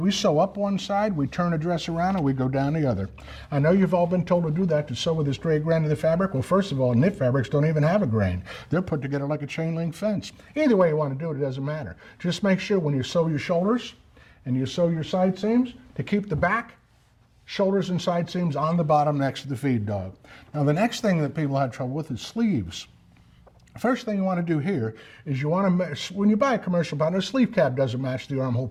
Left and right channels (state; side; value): identical; both; correlation 1.00